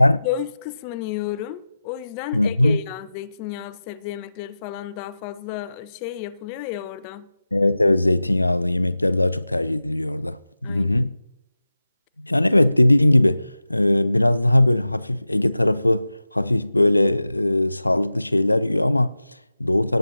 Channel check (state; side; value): inverted; both; correlation -0.95